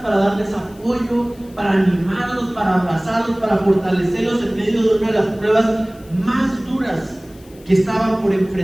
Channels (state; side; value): noise; left; hiss, 27 dB below the sound